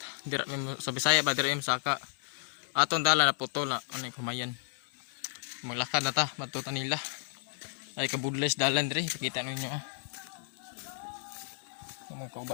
Dira sa Bisaya ba dira saka. Aton dala na putol na ano kumayan. Maglakad na ta, matuta nila. Ay kabudles dalan diri, kita ninyo ah. Mga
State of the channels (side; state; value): right; silent; digital silence